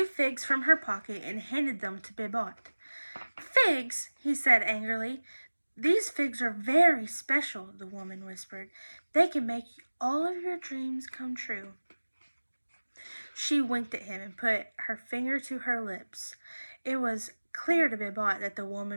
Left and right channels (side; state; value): both; inverted; correlation -1.00